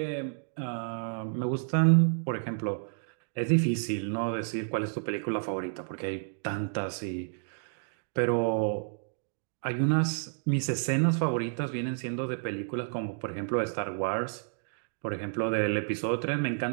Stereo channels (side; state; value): left; silent; digital silence